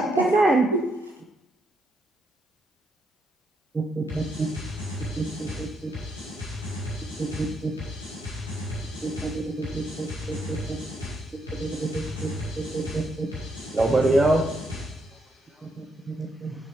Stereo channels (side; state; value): both; normal; correlation 0.77